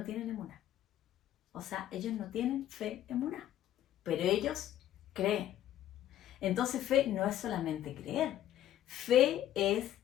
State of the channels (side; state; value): right; quieter; 12.1 dB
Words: tienen emuná. O sea, ellos no tienen fe emuná. Pero ellos creen. Entonces fe no es solamente creer. Fe es